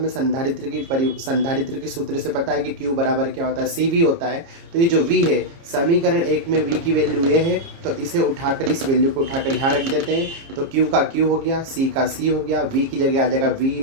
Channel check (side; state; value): left; late; 30 ms